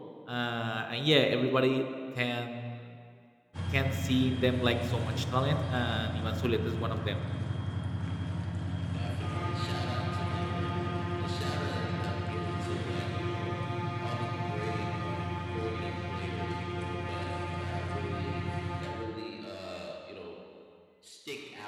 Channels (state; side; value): identical; both; correlation 1.00